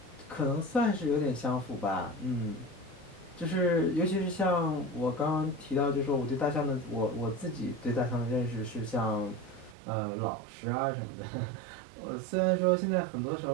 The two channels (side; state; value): left; drops out; at 9.8 s